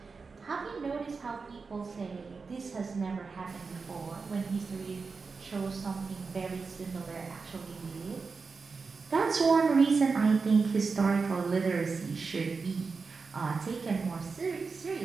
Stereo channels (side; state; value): left; quieter; 4.7 dB